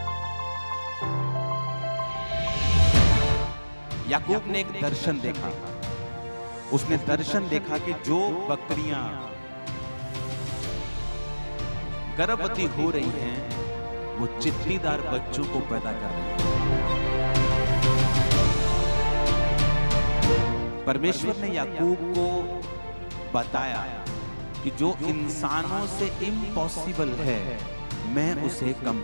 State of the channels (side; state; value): both; inverted; correlation -1.00